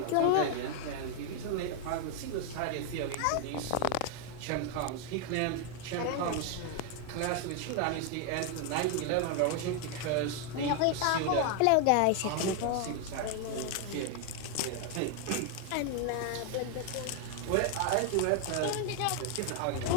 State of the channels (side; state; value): both; different; correlation 0.01